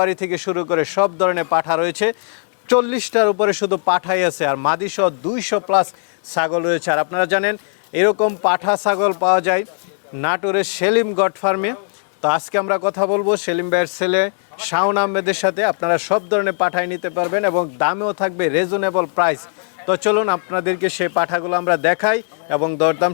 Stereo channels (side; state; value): right; silent; 59 dB below the other